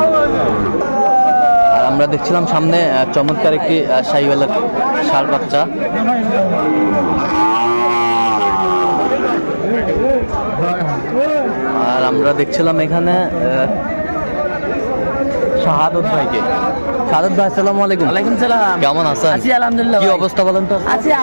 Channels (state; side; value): inverted; both; correlation -1.00